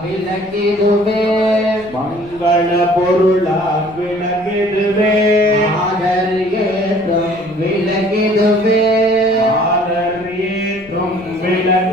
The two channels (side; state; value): left; noise; rumble, 23 dB below the sound